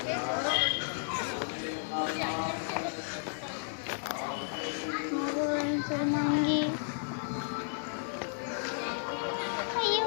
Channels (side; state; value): right; silent; digital silence